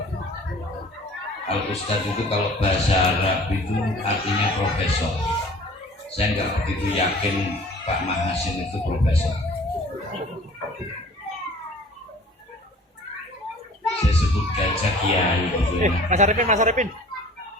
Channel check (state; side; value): normal; both; correlation 0.48